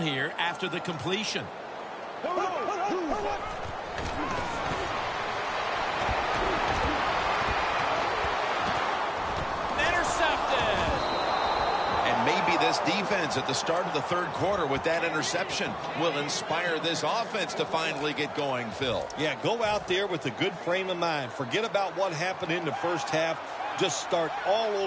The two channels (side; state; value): both; identical; correlation 1.00